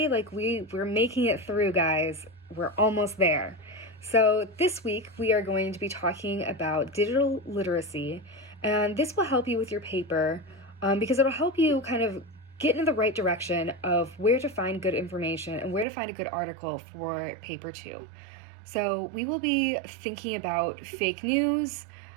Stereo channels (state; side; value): drops out; left; at 15.9 s